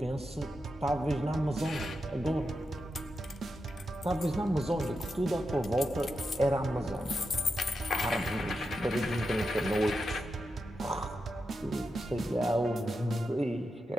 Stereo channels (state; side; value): normal; both; correlation 0.87